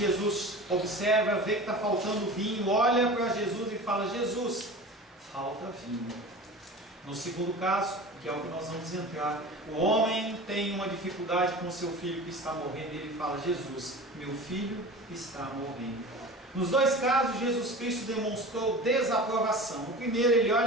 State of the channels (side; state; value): both; normal; correlation 0.36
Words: observa, vê que está faltando vinho, olha para Jesus e fala: Jesus, falta vinho. No segundo caso, que é o que nós vamos entrar, o homem tem uma dificuldade com o seu filho que está morrendo, e ele fala: Jesus, meu filho está morrendo. Nos dois casos, Jesus Cristo demonstrou desaprovação. No primeiro, ele